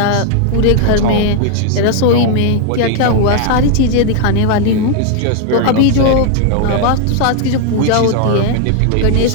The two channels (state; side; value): different; both; correlation 0.00